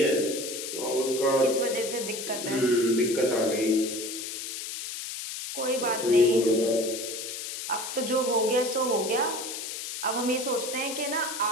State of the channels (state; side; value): noise; left; hiss, 7 dB below the sound